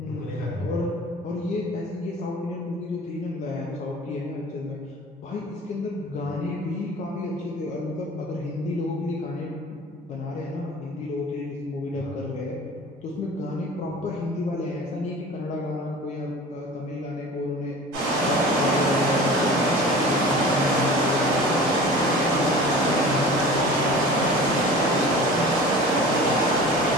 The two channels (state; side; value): normal; both; correlation 0.40